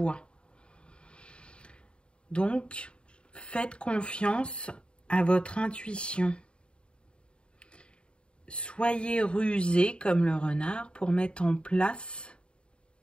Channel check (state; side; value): late; right; 0.053 ms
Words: ». Donc, faites confiance à votre intuition. Soyez rusé comme le renard pour mettre en place